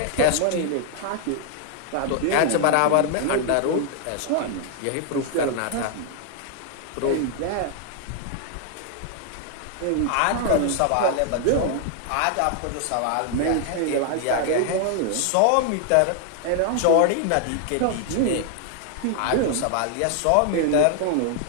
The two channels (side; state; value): both; different; correlation 0.00